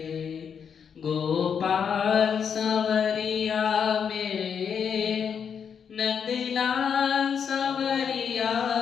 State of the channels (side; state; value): right; quieter; 7.2 dB